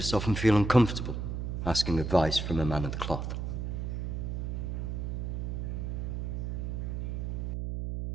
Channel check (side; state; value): right; noise; hum, 2 dB below the sound